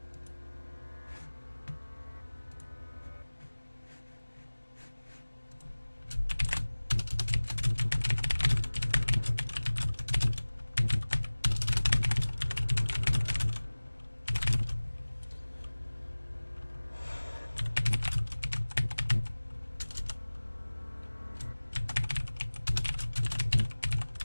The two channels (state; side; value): inverted; both; correlation -1.00